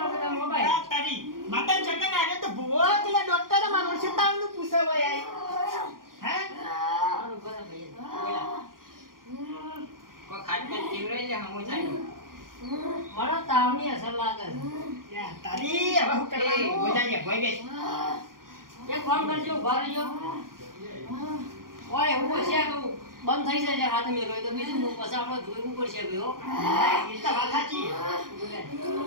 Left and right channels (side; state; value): left; late; 0.91 ms